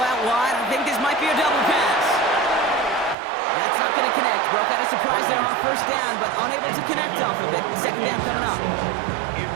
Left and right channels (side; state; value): left; drops out; at 3.2 s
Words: wide. I think this might be a double pass. That's not going to connect. Broke out a surprise there on first down, but unable to connect off of it. Second down coming up.